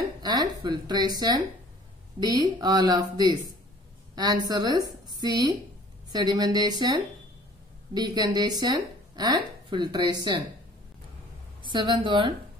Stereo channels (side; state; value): both; normal; correlation 0.51